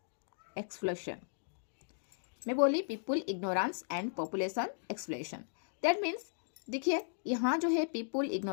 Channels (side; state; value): right; silent; digital silence